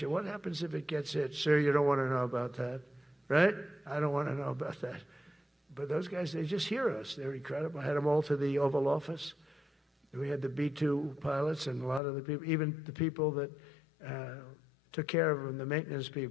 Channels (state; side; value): drops out; right; at 12.0 s